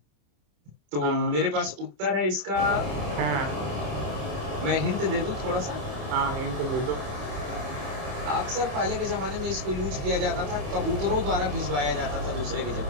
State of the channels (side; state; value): left; late; 28 ms